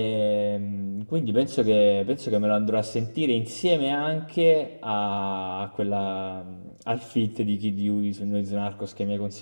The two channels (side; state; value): both; inverted; correlation -1.00